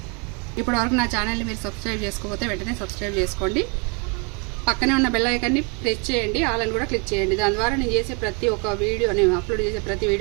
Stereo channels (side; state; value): left; quieter; 33.8 dB